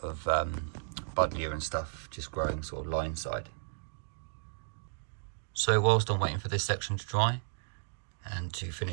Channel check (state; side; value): silent; left; digital silence